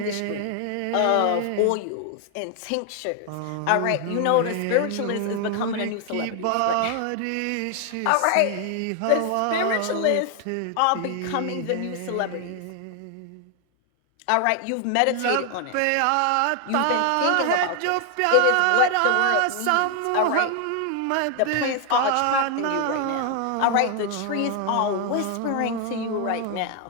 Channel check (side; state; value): both; different; correlation 0.00